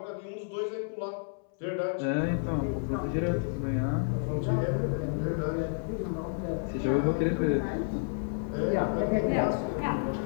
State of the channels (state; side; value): silent; right; 58 dB below the other